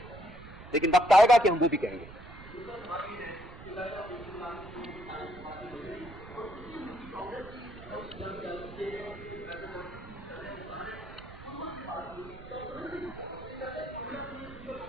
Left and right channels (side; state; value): right; noise; rumble, 16 dB below the sound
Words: لیکن وقت آئے گا کہ ہم وہ بھی کہیں گے.